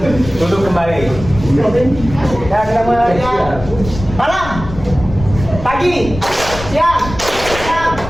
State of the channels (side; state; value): left; noise; rumble, 11 dB below the sound